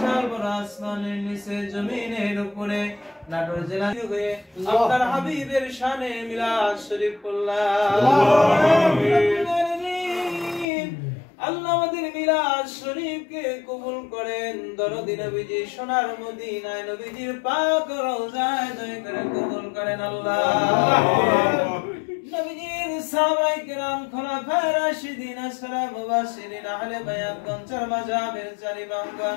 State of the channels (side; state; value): right; drops out; at 10.7 s